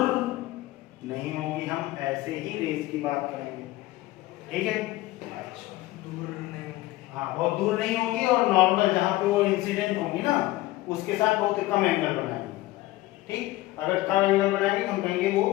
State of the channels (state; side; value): quieter; right; 17.7 dB